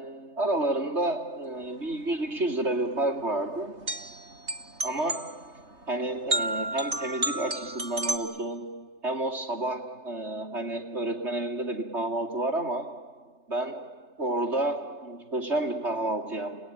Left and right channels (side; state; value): left; late; 3.3 ms